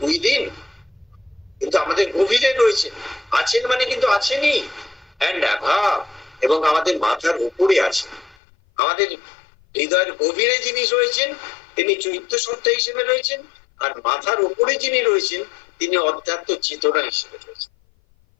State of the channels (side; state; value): right; drops out; at 8.3 s